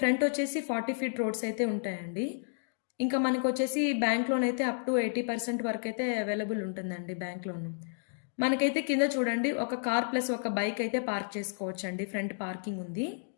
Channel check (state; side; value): silent; right; digital silence